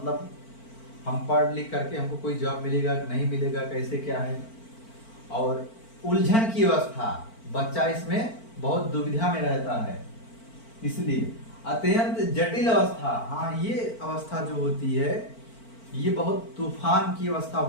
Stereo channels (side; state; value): right; late; 4.4 ms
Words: हम पढ़ लिख करके हमको कोई जॉब मिलेगा नहीं मिलेगा, कैसे क्या है। और उलझन की अवस्था, बच्चा इसमें बहुत दुविधा में रहता है। इसलिए अत्यंत जटिल अवस्था, हाँ ये अवस्था जो होती है ये बहुत तूफान की अवस्था